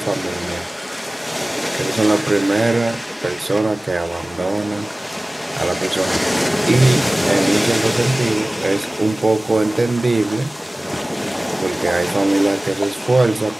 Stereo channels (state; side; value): normal; both; correlation 0.98